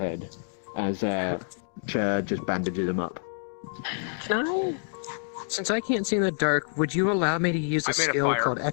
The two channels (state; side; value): silent; right; digital silence